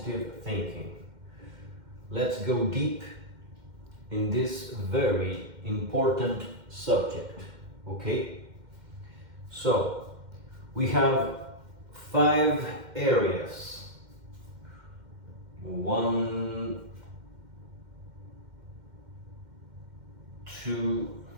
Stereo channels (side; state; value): left; late; 2.1 ms